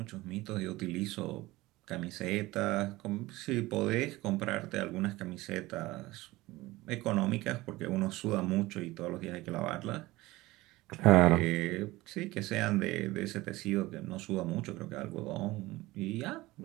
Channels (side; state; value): left; quieter; 19.3 dB